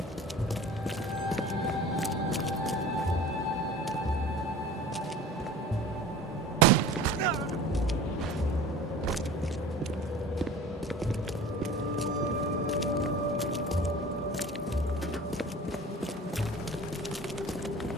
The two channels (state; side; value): normal; both; correlation 0.40